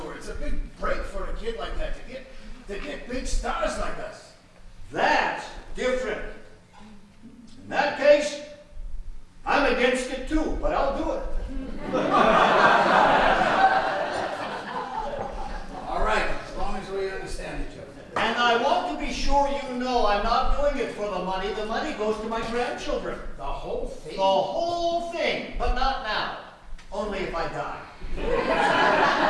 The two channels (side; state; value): both; identical; correlation 1.00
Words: It's a big break for a kid like that to get big stars like us. That's different. In that case, I'm against it too, but I'll do it. All right, as long as we understand each other. And I want to be sure you know I'm not doing it for the money. The money goes to my grandchildren. The whole thing? The whole thing, but not now. Only if I die.